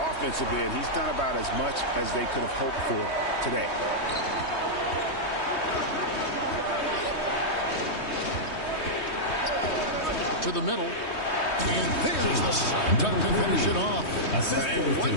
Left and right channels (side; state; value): right; late; 3.2 ms